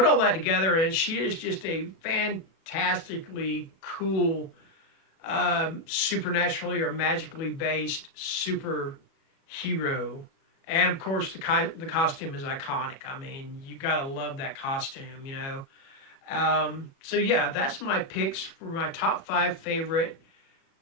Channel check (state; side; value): late; right; 37 ms